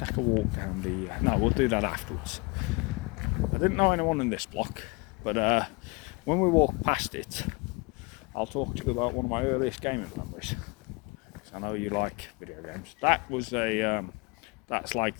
a walk down the, no, we'll do that afterwards. I didn't know anyone in this block, but when we walk past it, I'll talk to you about one of my earliest gaming memories. I know you like video games. That was a, that's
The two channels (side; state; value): right; quieter; 27.4 dB